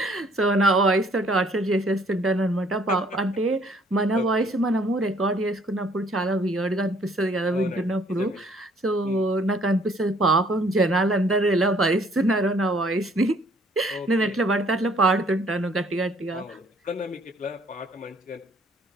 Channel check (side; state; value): both; normal; correlation 0.61